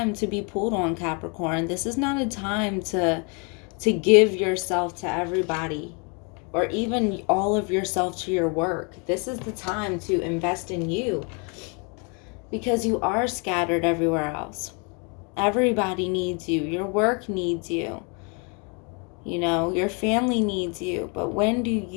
to be pulled on, Capricorn. This is not a time to give yourself to everybody, or even all of yourself to your work. This is the time to invest in you, because you are scattered everywhere else. Everybody needs you. Your work needs you. You know, your family needs you. But when do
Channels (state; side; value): quieter; right; 34.6 dB